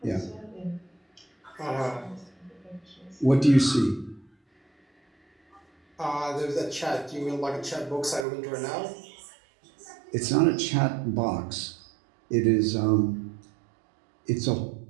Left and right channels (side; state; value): left; drops out; at 8.2 s